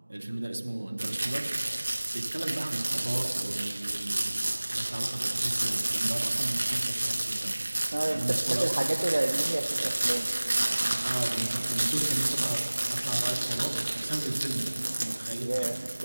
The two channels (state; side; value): inverted; both; correlation -1.00